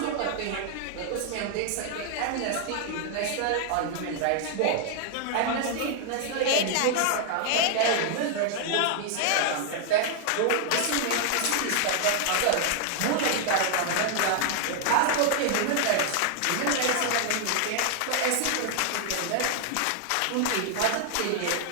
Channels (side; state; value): both; different; correlation 0.00